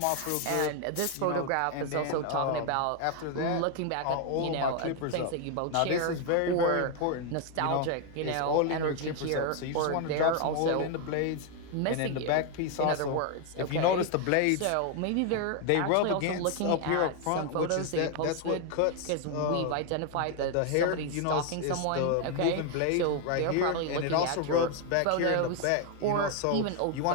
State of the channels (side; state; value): both; different; correlation 0.00